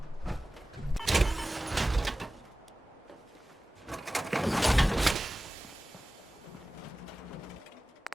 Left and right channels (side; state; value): both; normal; correlation 0.96